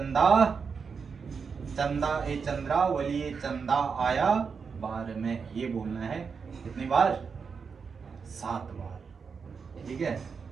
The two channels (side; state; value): left; quieter; 5.7 dB